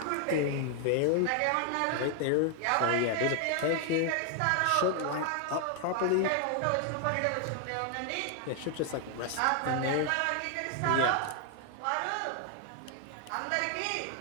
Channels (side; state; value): both; different; correlation 0.00